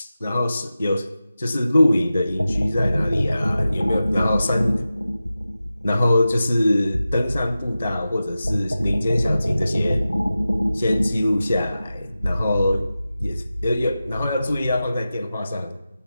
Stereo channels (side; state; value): both; inverted; correlation -0.94